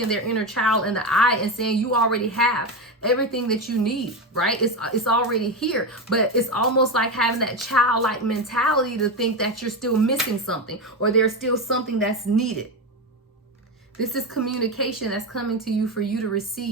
their inner child in the eye and saying, you already have everything that you need, right? It's already here. But it's almost like having that childlike mentality to think that you're still missing something, or there's still something that's needed. This is communication that's coming to you for you to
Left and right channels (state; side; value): normal; both; correlation 0.15